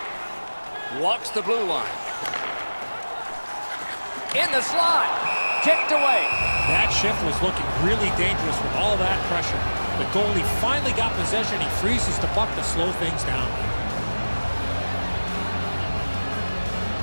Walks the blue line. In the slot. Kicked away. That shift was looking really dangerous with all that pressure. The goalie finally got possession. He freezes the puck to slow things down.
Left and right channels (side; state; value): both; inverted; correlation -1.00